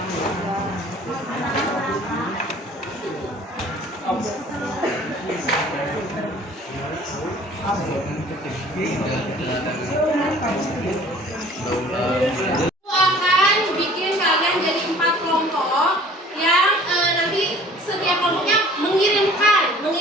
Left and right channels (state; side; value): normal; both; correlation 0.50